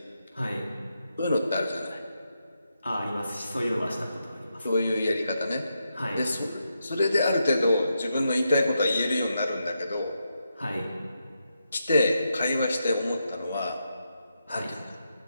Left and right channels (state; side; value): inverted; both; correlation -0.84